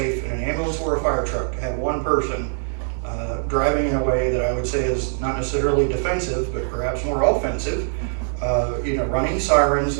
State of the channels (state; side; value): silent; left; digital silence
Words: in an ambulance or a fire truck to have 1 person driving in a way that I would say is not necessarily defensive, but perhaps more offensive. Running sirens